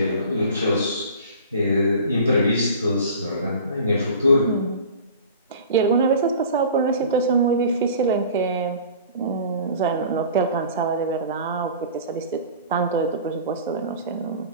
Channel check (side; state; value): both; inverted; correlation -0.41